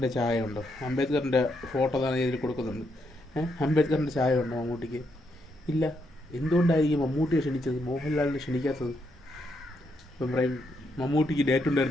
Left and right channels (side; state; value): both; normal; correlation 0.78